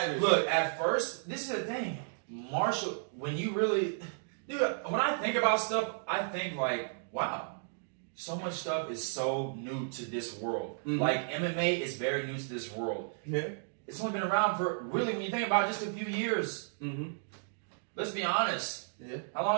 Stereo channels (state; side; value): silent; left; digital silence